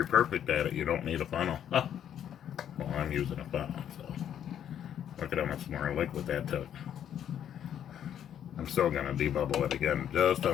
perfect at it, you don't need a funnel. Well, I'm using a funnel, so look at how much more liquid that took. I'm still going to debubble it again, just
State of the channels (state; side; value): quieter; right; 9.8 dB